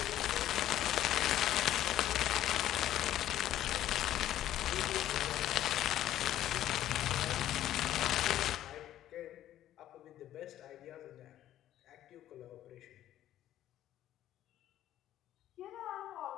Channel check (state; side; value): quieter; right; 12.6 dB